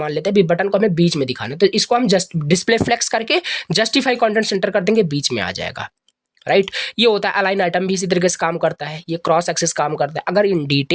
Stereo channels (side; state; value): both; identical; correlation 1.00